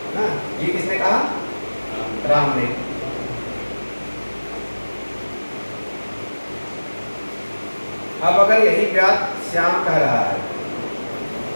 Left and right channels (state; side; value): inverted; both; correlation -1.00